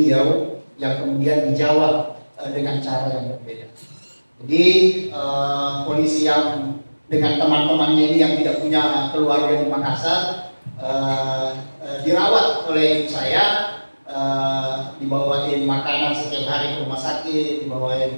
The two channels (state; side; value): inverted; both; correlation -1.00